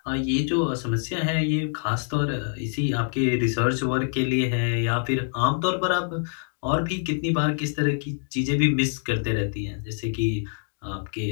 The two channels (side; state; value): right; silent; digital silence